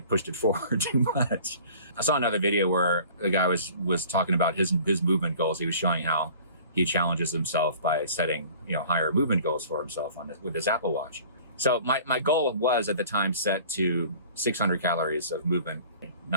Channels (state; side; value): inverted; both; correlation -0.47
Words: it forward too much. I saw another video where a guy was talking about his movement goals. He was showing how he challenges himself by setting, higher movement goals for himself with his Apple Watch. So my goal was at the time set to 600 calories of movement,